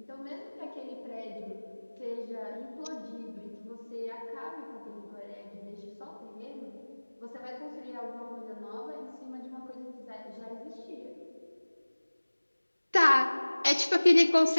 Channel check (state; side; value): inverted; both; correlation -1.00